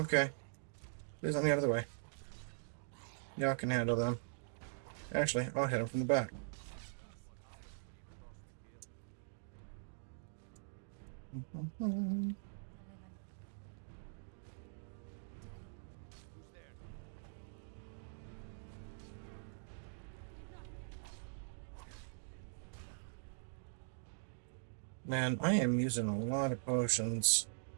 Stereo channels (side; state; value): left; silent; digital silence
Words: Please let me out of the way. Y'all can handle them. Actually, I'll hit him from the back. Man, I am using a lot of potions.